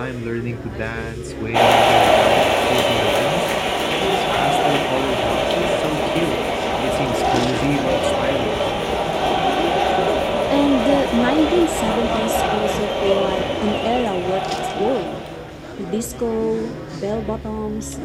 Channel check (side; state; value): both; identical; correlation 1.00